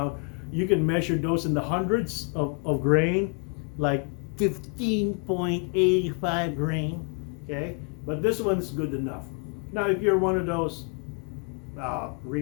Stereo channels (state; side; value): quieter; right; 38.9 dB